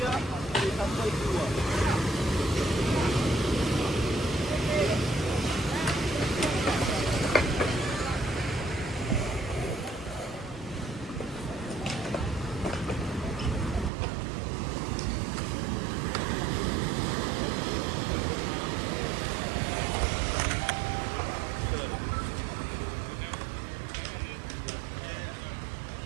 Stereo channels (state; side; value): drops out; left; at 13.9 s